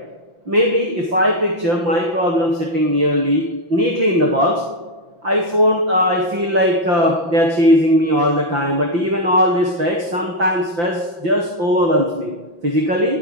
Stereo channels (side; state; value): left; late; 5.9 ms